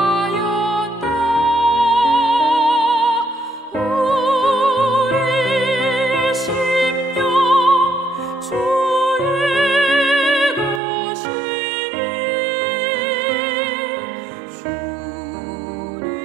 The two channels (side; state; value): left; drops out; at 10.8 s